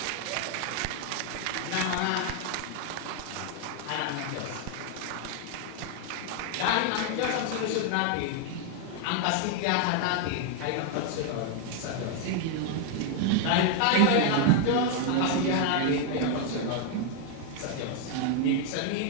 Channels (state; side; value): different; both; correlation 0.00